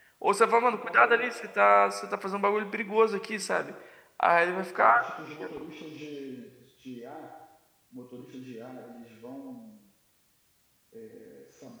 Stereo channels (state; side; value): identical; both; correlation 1.00